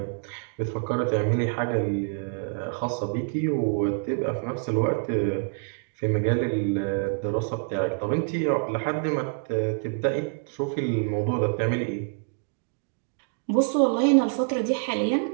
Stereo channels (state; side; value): silent; left; 60 dB below the other